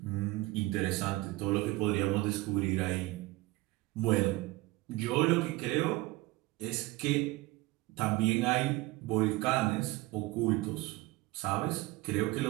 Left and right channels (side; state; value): left; quieter; 20.1 dB